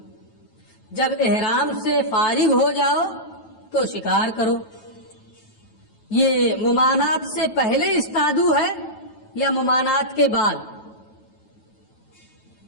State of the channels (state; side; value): late; right; 9.3 ms